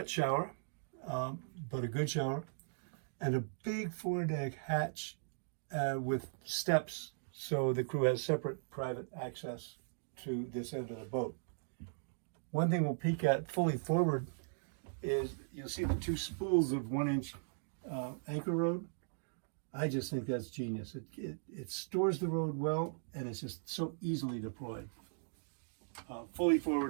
shower, but a good shower, and a big foredeck hatch with steps, so the crew has separate private access to this end of the boat. One thing we'll peek at fully forward is you'll see the two spools of 1-inch anchor road. I just think that's genius. It stores the road well, and it's just so easily deployed. Fully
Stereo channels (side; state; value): left; silent; digital silence